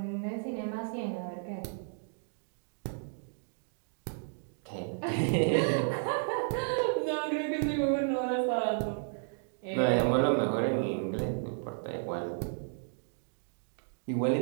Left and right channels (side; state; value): left; silent; digital silence